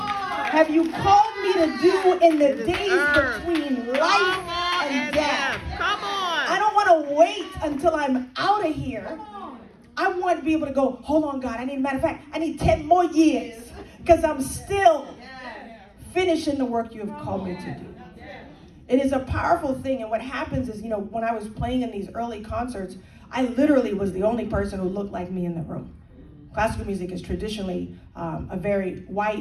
you called me to do in the days between life and death? Come on. I don't want to wait until I'm out of here. I want to be able to go, hold on, God, matter of fact, I need 10 more years because I'm still finishing the work you have called me to do. It is a powerful thing, and what happens is, you know, when I was playing in these early concerts, I literally was the only person who looked like me in the room. Classical music is traditionally a very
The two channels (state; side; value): identical; both; correlation 1.00